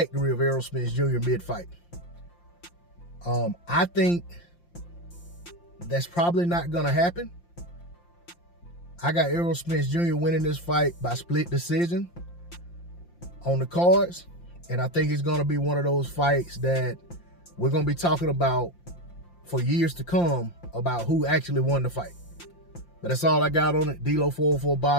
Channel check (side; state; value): right; late; 5.8 ms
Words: of Errol Spence Jr. mid-fight. I think that's probably not going to happen. I got Errol Spence Jr. winning this fight by split decision on the cards. And I think it's going to be one of those fights that we're going to be talking about for years to come about who actually won the fight. But that's all I got on it. D-Lo 404